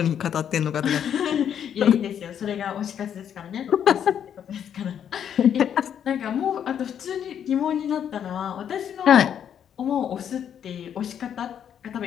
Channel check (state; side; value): quieter; right; 8.9 dB